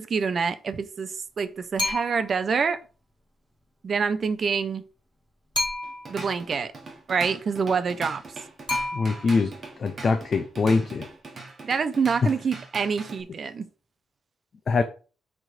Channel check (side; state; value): both; normal; correlation 0.83